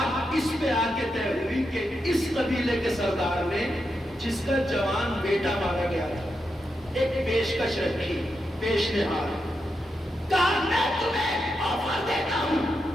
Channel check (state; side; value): normal; both; correlation 0.86